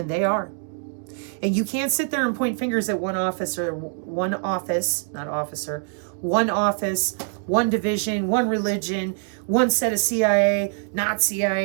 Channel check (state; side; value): silent; left; 55 dB below the other